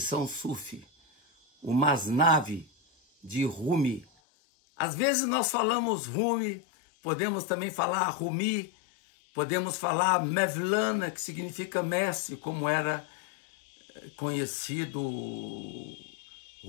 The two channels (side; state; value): right; drops out; at 4.0 s